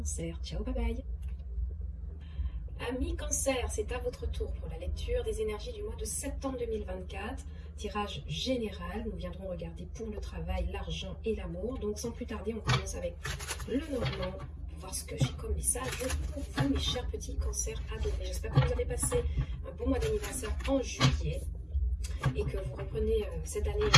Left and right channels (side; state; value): both; identical; correlation 1.00